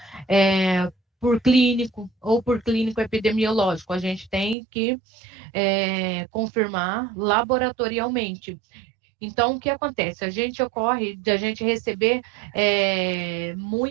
por clínico ou por clínico epidemiológico, a gente tem que confirmar laboratorialmente. Então, o que acontece? A gente receber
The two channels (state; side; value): drops out; left; at 4.5 s